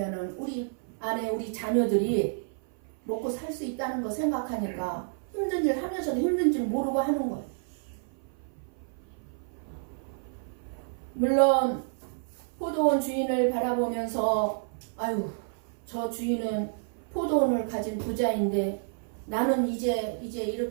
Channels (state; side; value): silent; left; 55 dB below the other